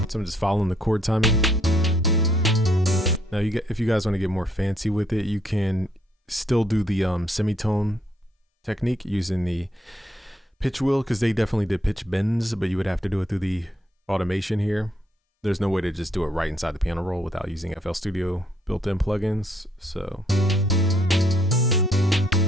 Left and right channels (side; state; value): both; normal; correlation 0.70